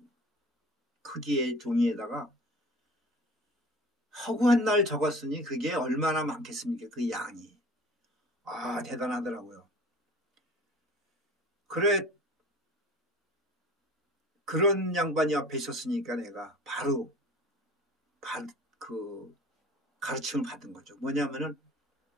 크기의 종이에다가 허구한 날 적었으니 그게 얼마나 많겠습니까? 그 양이. 대단하더라고요. 그래, 그런 양반이 앞에 있었으니까 내가 바로 가르침을 받은 거죠. 뭐냐면은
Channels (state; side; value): normal; both; correlation 0.43